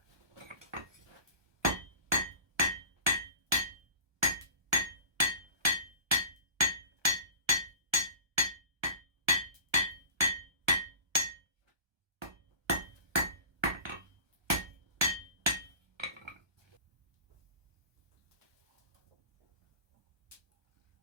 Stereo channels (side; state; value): left; late; 1.2 ms